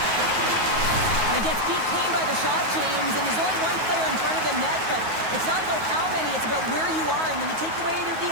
He gets beat clean by the shot, James, and there's only one player in front of the net, but it's not about how many, it's about where you are, and when you take away the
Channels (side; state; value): left; late; 9.4 ms